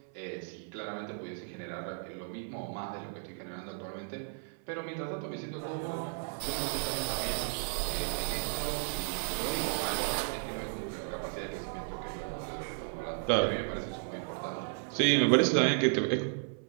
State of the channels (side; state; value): left; silent; 55 dB below the other